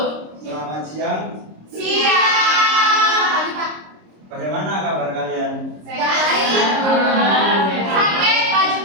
Selamat siang. Siap. Bagaimana kabar kalian? Baik. Sakit, baju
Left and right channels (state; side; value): late; left; 26 ms